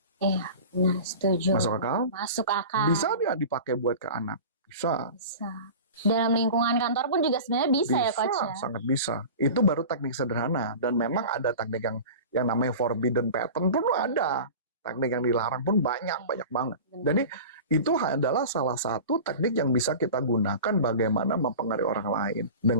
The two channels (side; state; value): both; inverted; correlation -0.35